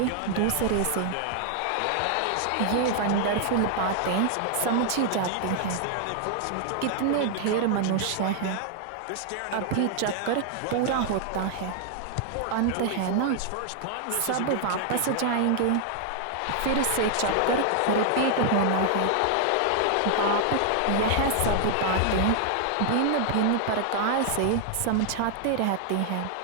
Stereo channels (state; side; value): different; both; correlation 0.00